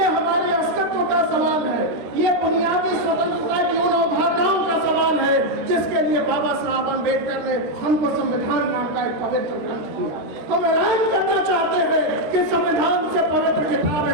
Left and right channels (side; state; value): left; late; 13 ms